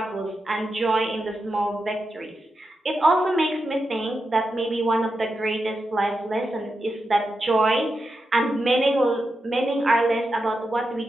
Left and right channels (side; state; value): both; normal; correlation 0.88